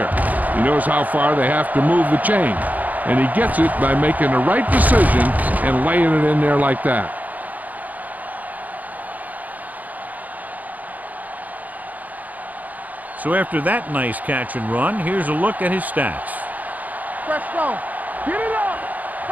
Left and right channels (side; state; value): left; late; 0.079 ms